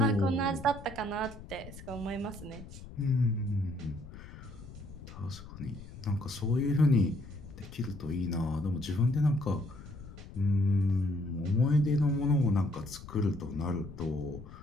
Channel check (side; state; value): left; noise; rumble, 15 dB below the sound